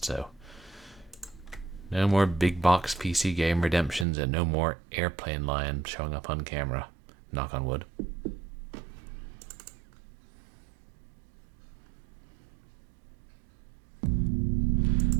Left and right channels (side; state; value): left; drops out; at 4.0 s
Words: so no more big box PC game redemptions and no more airplane lion showing up on camera. Knock on wood.